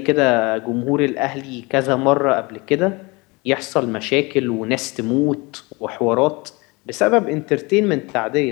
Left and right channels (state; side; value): quieter; right; 25.9 dB